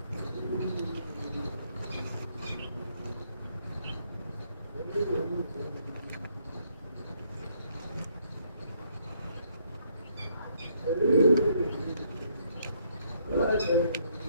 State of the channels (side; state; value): both; inverted; correlation -0.69